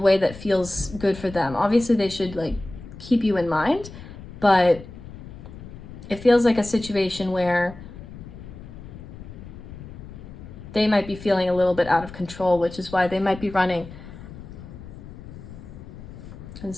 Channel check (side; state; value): left; noise; rumble, 14 dB below the sound